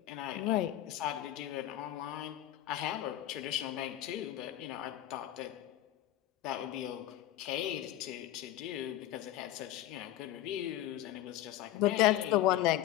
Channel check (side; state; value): right; quieter; 13.3 dB